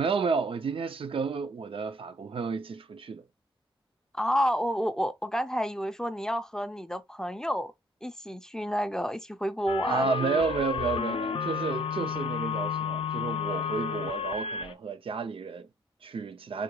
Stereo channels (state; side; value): normal; both; correlation 0.61